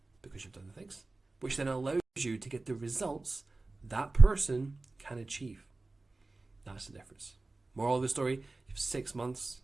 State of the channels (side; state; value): left; quieter; 3.3 dB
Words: because you've done the things, which then allows you to get the results that person can achieve. That's the difference. Moral of the story, you have 6 months